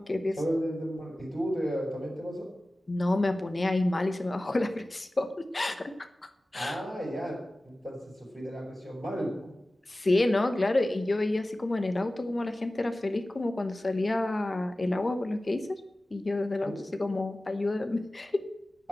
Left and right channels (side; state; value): both; normal; correlation 0.96